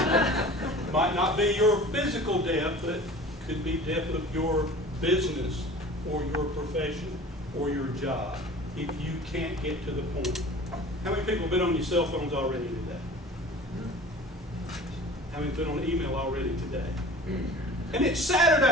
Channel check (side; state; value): both; normal; correlation 0.42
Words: Might not be your physical death, but could be death of your business or your profession or your job if you can't get to the point. How many people have been on your cell phones already today? How many have been on email already today? And it's